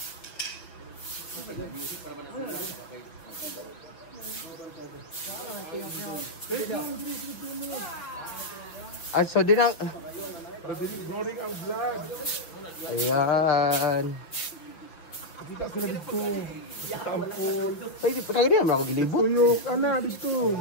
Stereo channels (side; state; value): right; late; 6.0 ms